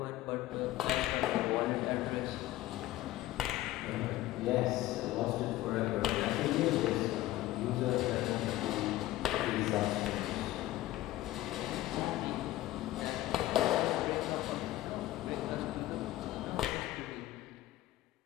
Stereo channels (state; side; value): quieter; right; 16.0 dB